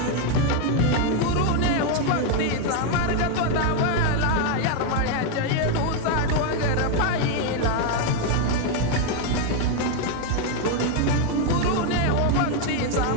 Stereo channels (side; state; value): both; different; correlation 0.01